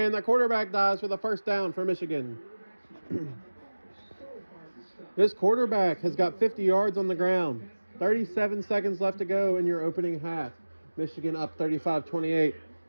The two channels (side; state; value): both; inverted; correlation -1.00